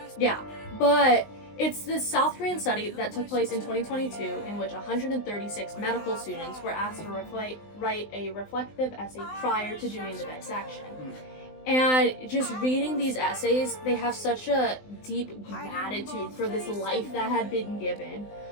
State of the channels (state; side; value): late; right; 19 ms